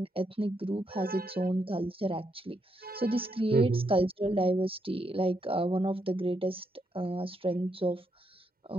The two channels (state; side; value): normal; both; correlation 0.79